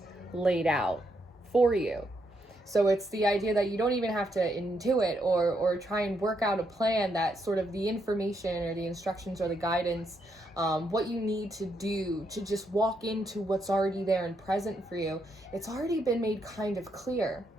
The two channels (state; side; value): normal; both; correlation 0.78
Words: laid out for you. So it's the idea that you don't even have to intuit or try and work out a plan, that sort of the information or the instructions or the guidance, what you need to do to just walk into what's already there and present for you. It's already been made kind of clear,